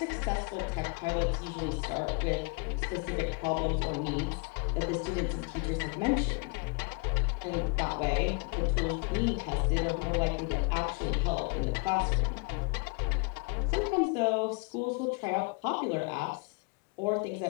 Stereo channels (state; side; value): quieter; right; 32.1 dB